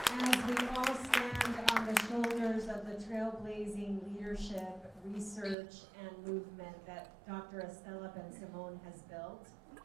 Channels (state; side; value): drops out; left; at 5.6 s